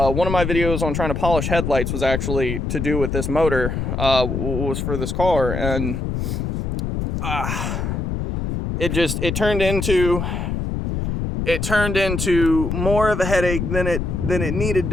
of my videos on trying to polish headlights was actually to do with this motor, was for this car, and it turned into more of a headache than it needed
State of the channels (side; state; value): left; noise; rumble, 2 dB below the sound